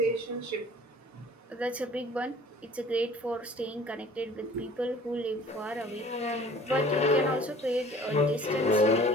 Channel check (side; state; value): both; normal; correlation 0.49